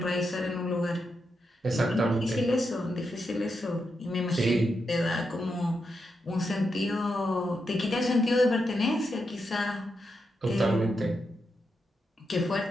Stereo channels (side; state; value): both; normal; correlation 0.85